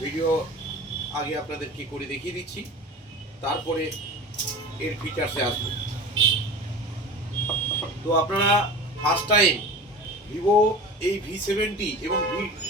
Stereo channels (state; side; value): normal; both; correlation 0.34